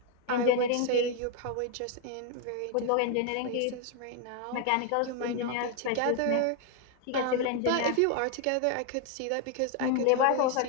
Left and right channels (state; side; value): different; both; correlation 0.01